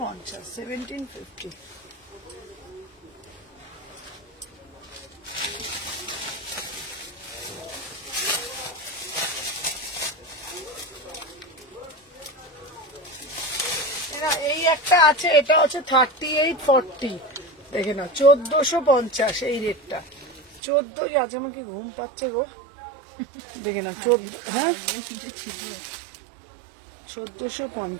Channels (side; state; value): left; drops out; at 20.6 s